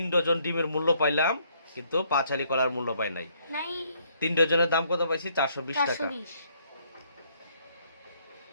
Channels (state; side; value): inverted; both; correlation -0.67